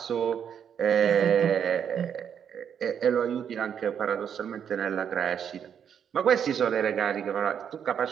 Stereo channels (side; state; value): left; quieter; 8.2 dB